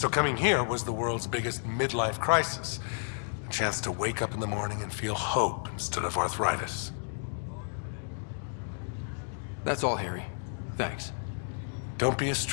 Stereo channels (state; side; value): silent; right; digital silence